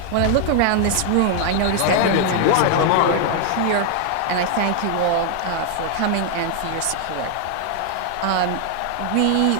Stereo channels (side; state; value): both; different; correlation 0.00